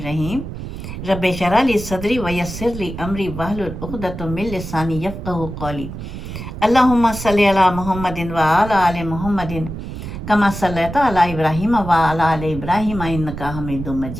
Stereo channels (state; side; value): noise; right; rumble, 9 dB below the sound